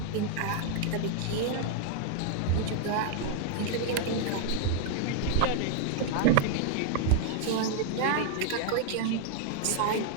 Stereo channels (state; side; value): different; both; correlation -0.01